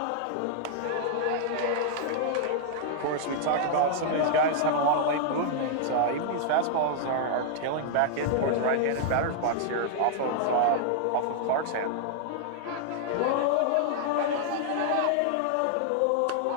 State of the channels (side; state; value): both; different; correlation -0.01